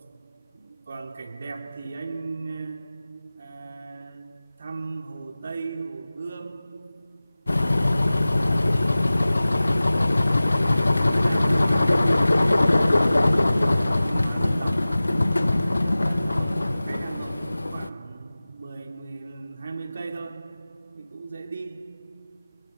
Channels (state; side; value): inverted; both; correlation -0.97